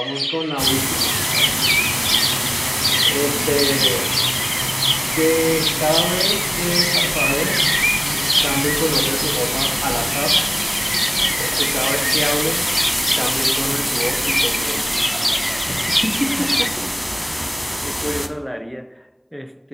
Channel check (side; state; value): both; identical; correlation 1.00